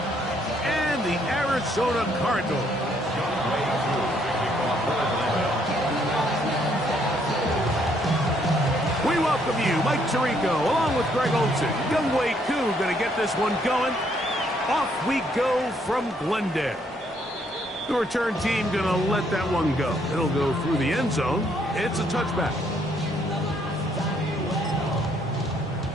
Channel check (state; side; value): normal; both; correlation 0.69